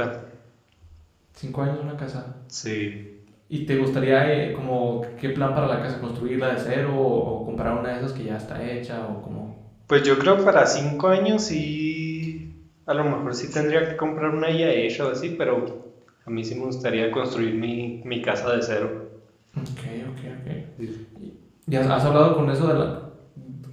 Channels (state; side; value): identical; both; correlation 1.00